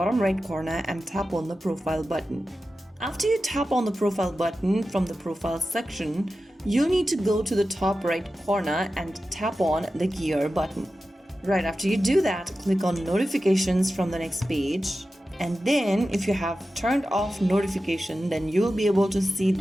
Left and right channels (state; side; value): normal; both; correlation 0.93